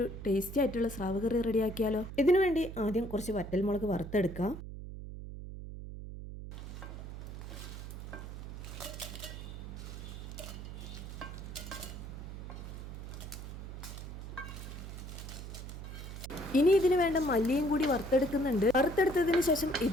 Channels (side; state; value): right; noise; hum, 9 dB below the sound